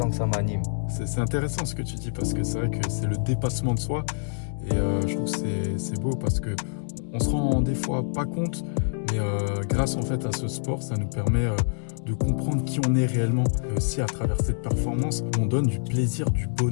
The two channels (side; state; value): right; silent; 61 dB below the other